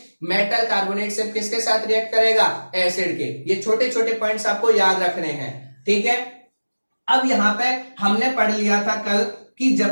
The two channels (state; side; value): inverted; both; correlation -1.00